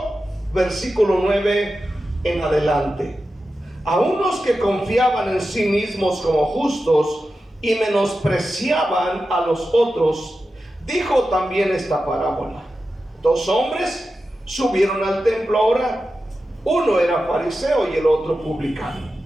versículo 9 en adelante. A unos que confiaban en sí mismos como justos y menospreciaban a los otros, dijo también esta parábola. Dos hombres subieron al templo a orar. Uno era fariseo y el otro publicano.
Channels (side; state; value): both; normal; correlation 0.92